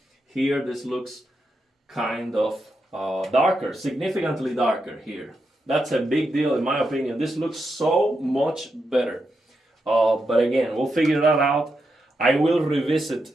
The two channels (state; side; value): normal; both; correlation 0.85